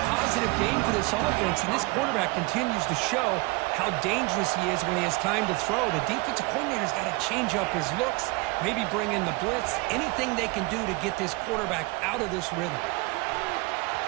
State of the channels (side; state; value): left; quieter; 25.6 dB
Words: positive game for this offense, and this quarterback continues to show how dangerous he is when he has time to throw. The defensive coordinator's got to change up his looks, maybe bring in the blitz, anything they can do to get this quarterback out of this rhythm.